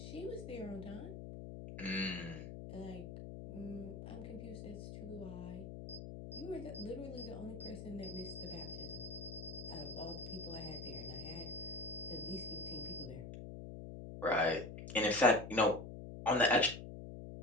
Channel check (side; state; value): left; noise; hum, 9 dB below the sound